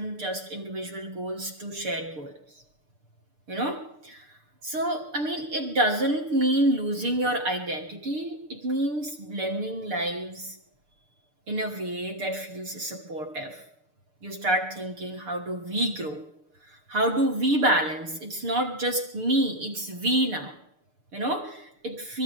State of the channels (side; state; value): left; late; 6.7 ms